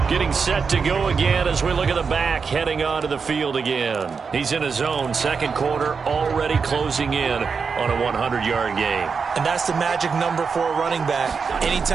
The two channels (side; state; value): left; quieter; 5.5 dB